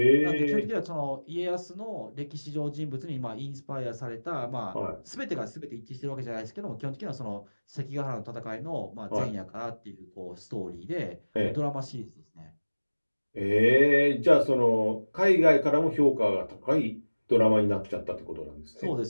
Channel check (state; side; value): inverted; both; correlation -1.00